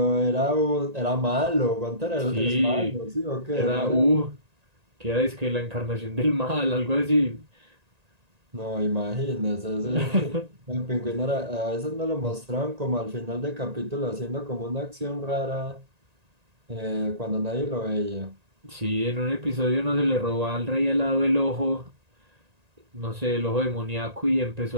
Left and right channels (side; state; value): left; late; 1.9 ms